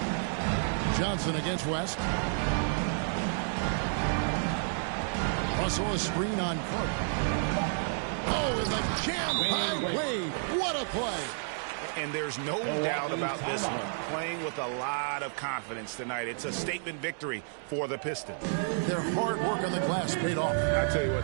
Johnson against West. Russell a screen on Carter. Oh, and the jam by Wade. What a play. And there's no doubt about this one. Playing with a lot of confidence tonight. It's a statement victory for the Pistons. Their hard work on the glass paid off. I tell you what,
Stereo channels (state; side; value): silent; left; digital silence